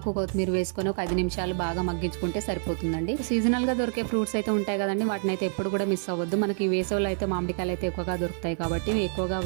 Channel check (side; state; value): left; silent; 56 dB below the other